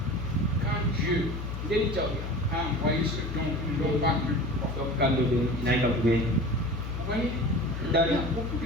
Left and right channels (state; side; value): noise; left; hum, 5 dB below the sound